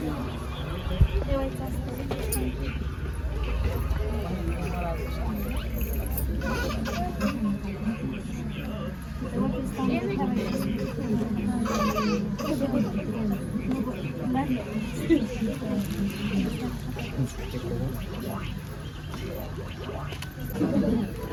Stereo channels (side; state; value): both; identical; correlation 1.00